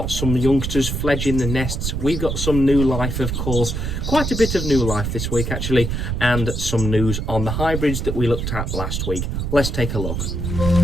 some youngsters fledging the nests. We've got some new life, of course, quite a bit of new life this week actually, and some news on the hybrids that we looked at last week. Let's take a look.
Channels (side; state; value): right; noise; rumble, 2 dB below the sound